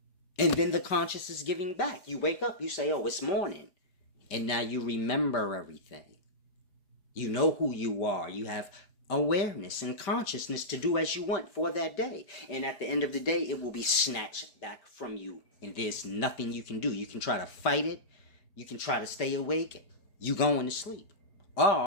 And then the conscious is giving back. You wake up, you say, oh, it's morning. And now you remember everything. You know who you are. You have awareness and consciousness to do as you want for that day. And at the end of the day, it will be snatched back from you. And there's nothing you can do. You can try to fight it. You can try to stay awake. You going to sleep.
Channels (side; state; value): right; late; 5.1 ms